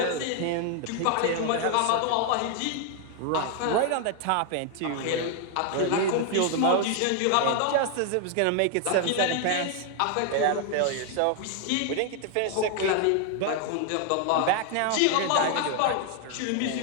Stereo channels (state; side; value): different; both; correlation 0.00